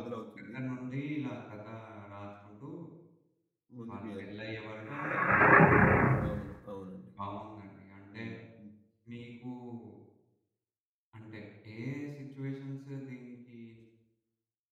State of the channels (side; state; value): both; identical; correlation 1.00